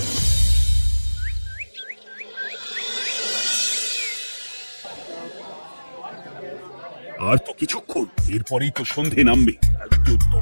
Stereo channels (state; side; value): inverted; both; correlation -1.00